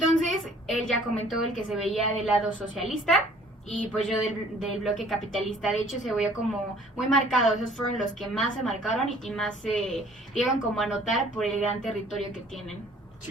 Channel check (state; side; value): normal; both; correlation 0.55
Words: él ya comentó el que se veía del lado socialista y pues yo del bloque capitalista. De hecho, se veía como muy marcado. Esos fueron los que más se marcaron y más se dieron como a notar por el gran territorio que tienen.